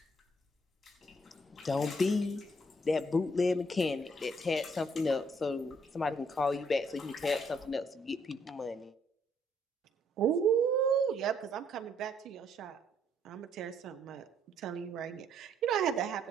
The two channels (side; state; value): both; normal; correlation 0.68